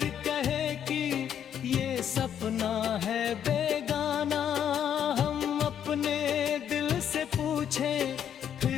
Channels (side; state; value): right; quieter; 9.2 dB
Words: कहे कि ये सपना है बेगाना। हम अपने दिल से पूछें